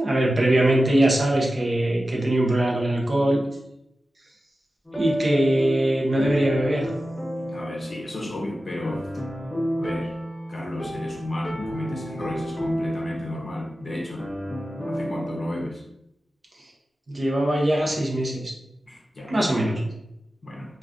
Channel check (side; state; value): both; normal; correlation 0.93